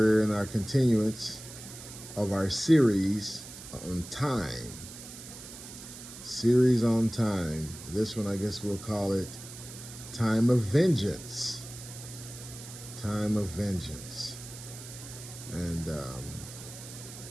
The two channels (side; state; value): right; noise; hiss, 14 dB below the sound